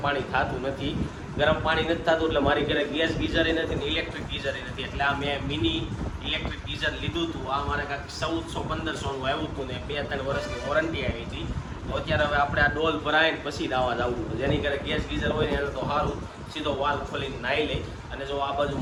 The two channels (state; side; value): identical; both; correlation 1.00